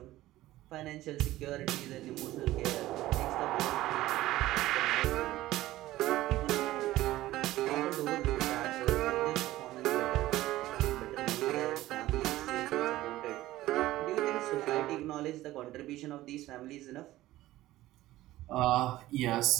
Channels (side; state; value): left; quieter; 16.1 dB